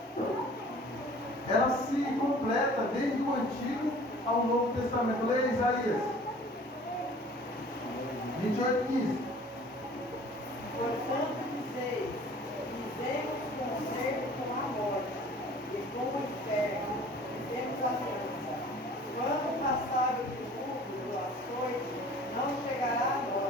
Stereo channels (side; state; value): both; normal; correlation 0.48